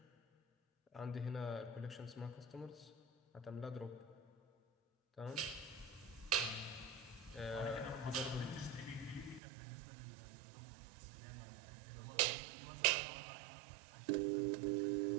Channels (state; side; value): drops out; left; at 9.4 s